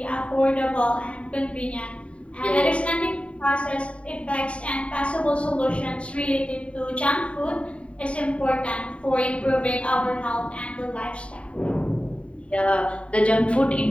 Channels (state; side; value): late; right; 0.062 ms